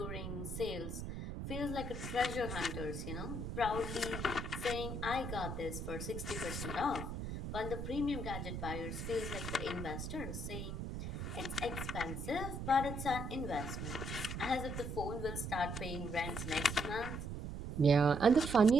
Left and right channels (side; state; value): right; noise; rumble, 5 dB below the sound